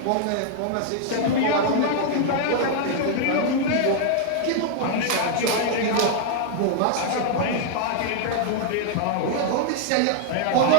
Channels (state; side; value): different; both; correlation 0.00